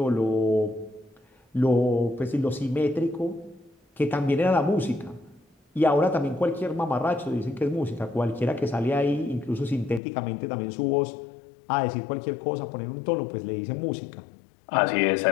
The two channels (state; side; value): drops out; right; at 10.0 s